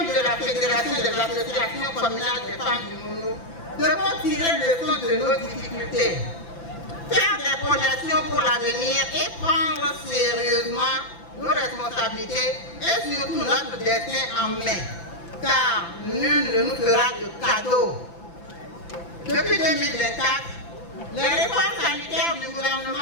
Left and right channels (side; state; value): right; late; 5.9 ms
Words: de la Fédération des associations communales des femmes du Mono, devons tirer leçon de nos difficultés, faire des projections pour l'avenir et prendre sérieusement nos responsabilités et surtout notre destin en main, car nul ne nous fera de cadeau. Depuis 2024, les réformes sanitaires du